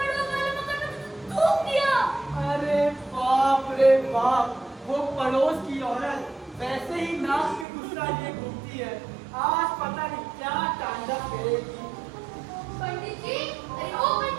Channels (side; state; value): left; drops out; at 7.7 s